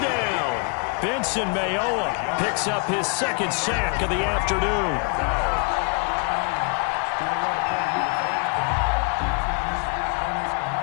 Benson Mayowa picks up his 2nd sack of the afternoon.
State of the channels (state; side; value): quieter; right; 36.3 dB